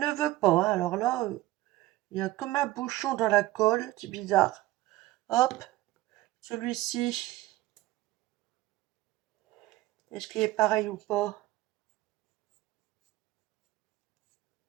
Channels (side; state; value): left; quieter; 16.9 dB